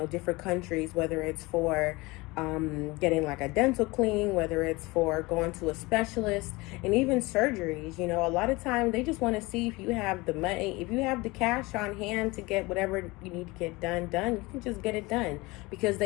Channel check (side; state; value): right; quieter; 23.0 dB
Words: different countries, whether it's for getting like a dental cleaning, whether it's for going to a specialist, and even surgeries. A lot of times they just want to see if you have the money, if you have the cash on hand to get whatever you need to get done. You can just get it done because